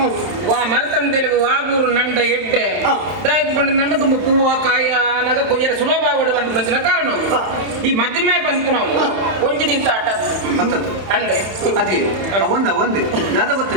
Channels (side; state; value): left; late; 31 ms